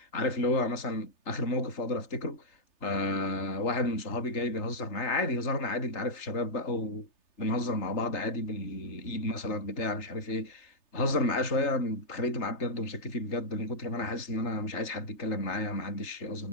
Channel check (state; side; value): late; right; 3.3 ms